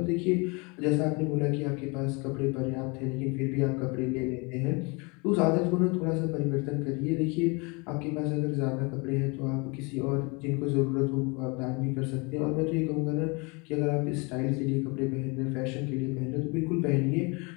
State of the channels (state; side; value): quieter; right; 29.5 dB